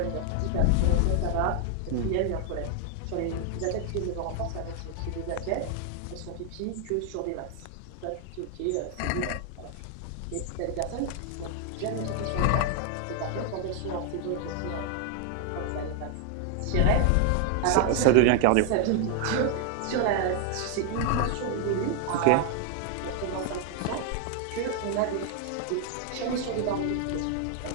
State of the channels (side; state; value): both; different; correlation 0.00